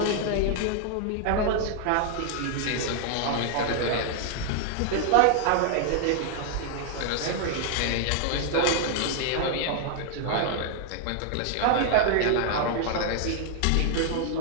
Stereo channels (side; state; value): both; different; correlation 0.00